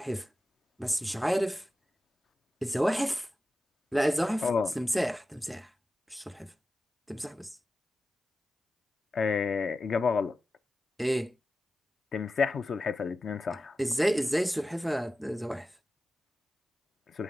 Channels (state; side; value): normal; both; correlation 0.93